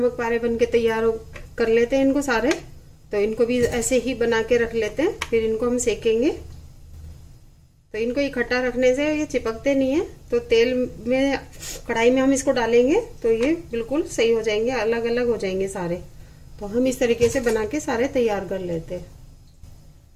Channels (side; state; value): both; identical; correlation 1.00